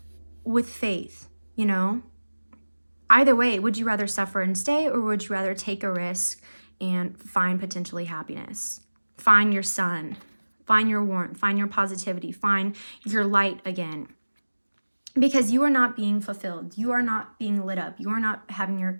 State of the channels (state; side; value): inverted; both; correlation -1.00